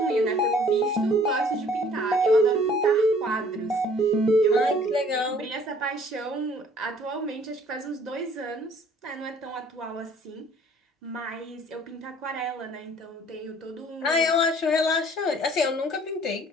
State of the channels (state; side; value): normal; both; correlation 0.56